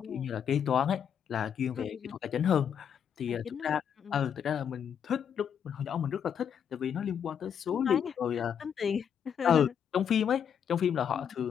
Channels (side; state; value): right; quieter; 8.1 dB